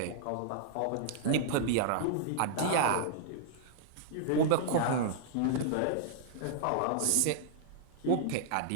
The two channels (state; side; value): different; both; correlation -0.01